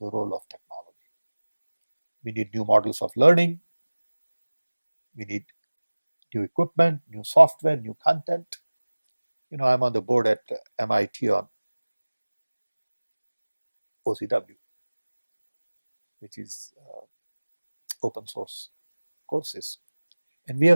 the role of technology. We need new models of learning. We need new equipment, new software, new content. You know, I'm on the board at MIT on OCW, which is open source courses. And we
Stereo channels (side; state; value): both; inverted; correlation -1.00